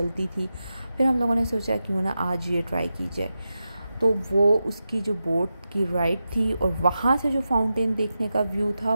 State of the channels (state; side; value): inverted; both; correlation -0.90